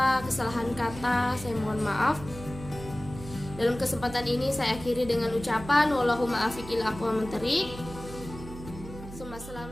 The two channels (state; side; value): noise; right; hum, 13 dB below the sound